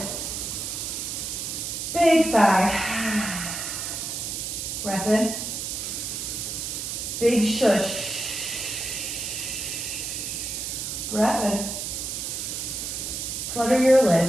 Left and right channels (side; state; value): right; noise; hiss, 4 dB below the sound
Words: Big sigh. Breath in. Big shush. Breath in. Flutter your